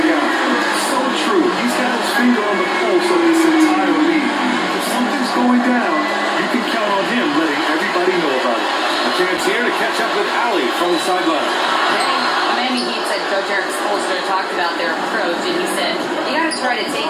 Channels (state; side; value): identical; both; correlation 1.00